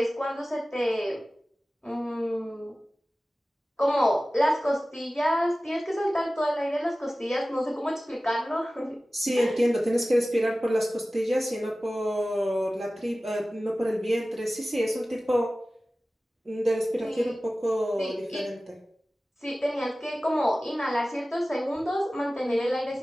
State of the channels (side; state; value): both; normal; correlation 0.96